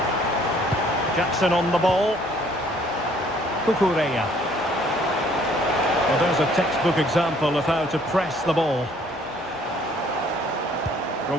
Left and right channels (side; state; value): both; normal; correlation 0.60